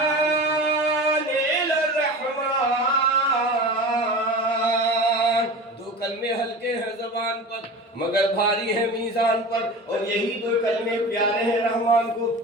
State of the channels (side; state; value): both; normal; correlation 0.32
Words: الی الرحمن۔ دو کلمے ہلکے ہیں زبان پر مگر بھاری ہیں میزان پر، اور یہی دو کلمے پیارے ہیں رحمان کو۔